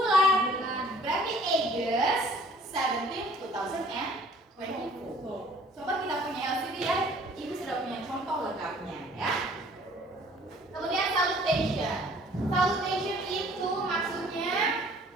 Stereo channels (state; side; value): normal; both; correlation 0.54